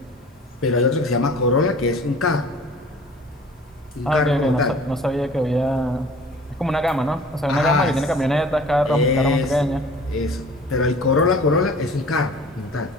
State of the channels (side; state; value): both; normal; correlation 0.47